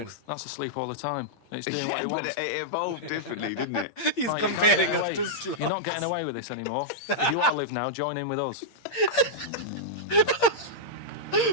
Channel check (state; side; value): late; right; 8.6 ms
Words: sloth, that's asleep all the time. It's doing what Yeah, it but wants. it evolved differently, didn't it? He's Right, you're not comparing getting us away- to sloth. You're not getting away with this anymore. If you want to live now, join in with us.